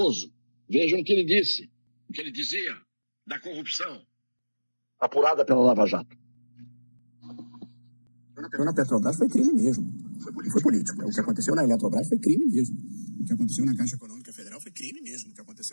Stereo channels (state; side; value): inverted; both; correlation -1.00